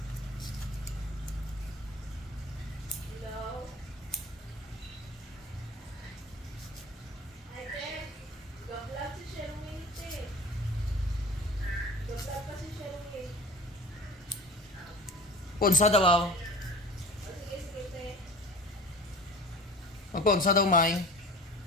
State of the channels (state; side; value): normal; both; correlation 0.39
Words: Ponsa daw ako. Magponsa daw, May.